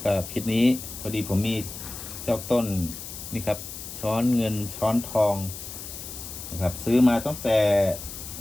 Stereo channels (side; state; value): left; noise; hiss, 10 dB below the sound